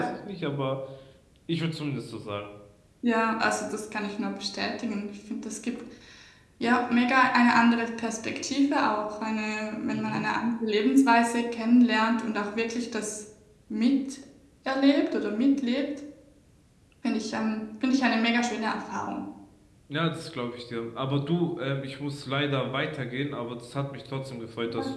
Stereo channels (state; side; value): identical; both; correlation 1.00